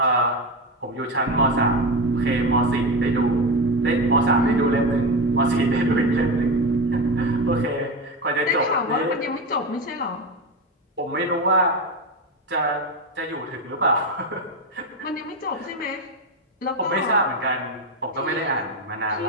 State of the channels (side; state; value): both; normal; correlation 0.18